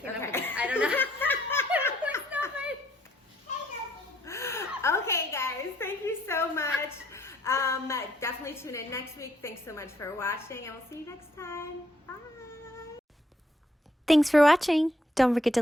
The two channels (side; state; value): both; normal; correlation 0.69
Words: up with Okay. it. I don't know. It's not my- Okay, guys. Thank you so much. Definitely tune in next week. Thanks so much for watching, and we'll see you next time. Bye. Thanks for watching. Don't forget to